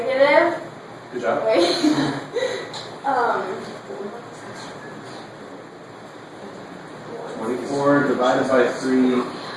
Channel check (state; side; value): identical; both; correlation 1.00